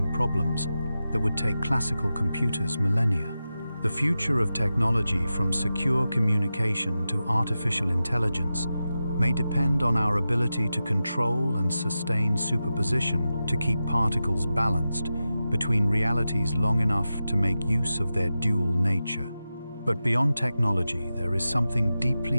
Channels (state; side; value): inverted; both; correlation -0.92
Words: problems that would take classical computers millennia. The future of technology, from secure communication to artificial intelligence, may depend on our ability to control and sustain superposition to keep particles balanced between realities long enough to make use of their dual nature. But beyond technology, there is something